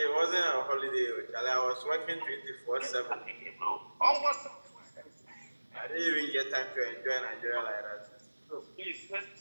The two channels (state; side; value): inverted; both; correlation -1.00